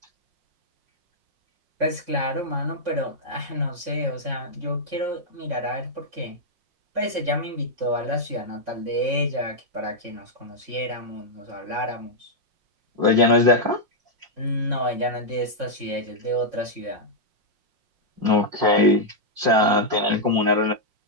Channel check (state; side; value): late; left; 5.6 ms